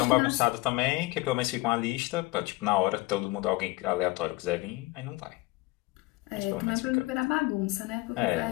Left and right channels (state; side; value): quieter; right; 20.2 dB